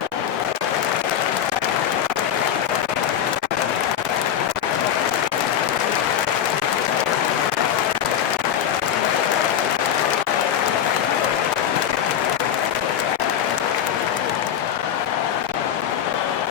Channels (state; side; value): quieter; right; 9.6 dB